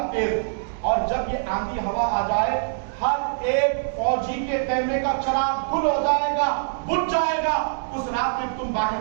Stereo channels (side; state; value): left; silent; digital silence